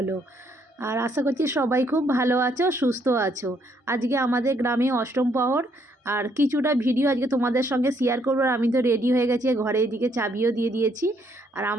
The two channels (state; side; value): normal; both; correlation 0.70